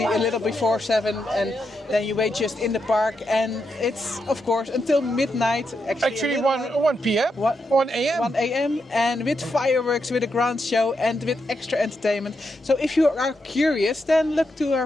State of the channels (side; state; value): both; normal; correlation 0.84